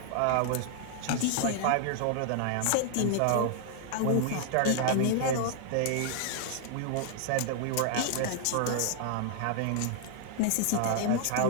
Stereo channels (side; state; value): both; different; correlation 0.00